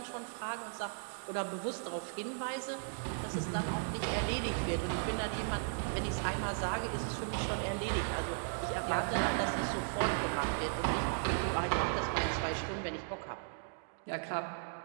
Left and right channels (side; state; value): left; silent; digital silence